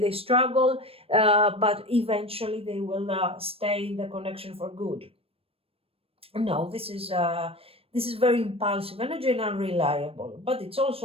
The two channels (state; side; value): late; left; 0.28 ms